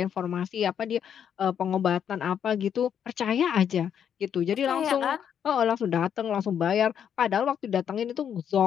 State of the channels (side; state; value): right; quieter; 8.6 dB